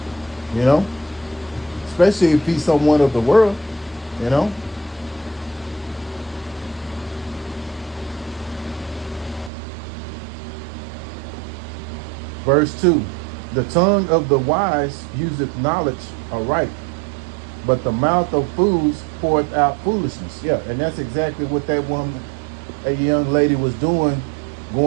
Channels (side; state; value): left; drops out; at 9.5 s